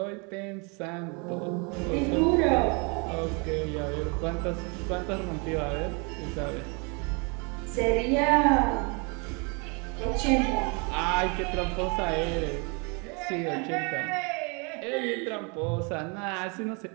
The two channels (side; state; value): left; quieter; 32.6 dB